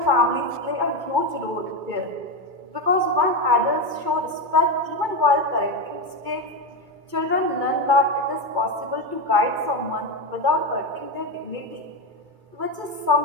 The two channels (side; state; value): left; late; 2.3 ms